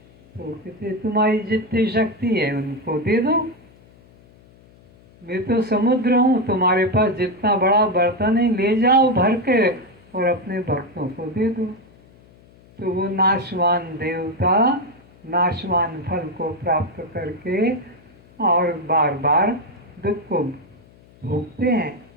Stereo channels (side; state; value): left; noise; hum, 27 dB below the sound